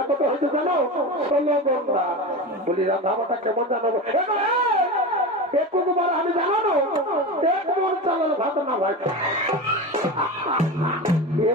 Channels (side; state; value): both; normal; correlation 0.25